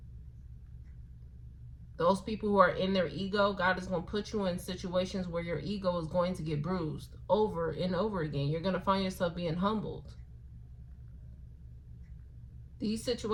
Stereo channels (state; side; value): identical; both; correlation 1.00